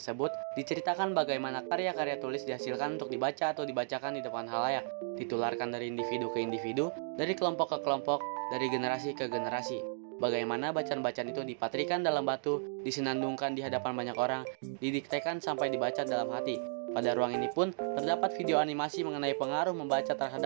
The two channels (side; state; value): left; silent; digital silence